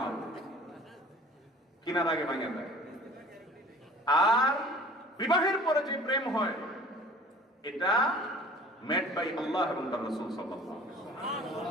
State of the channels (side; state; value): both; normal; correlation 0.47